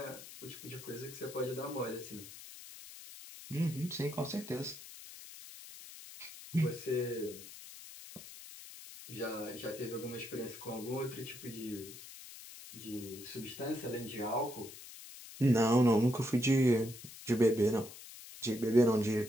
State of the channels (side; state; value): left; noise; hiss, 15 dB below the sound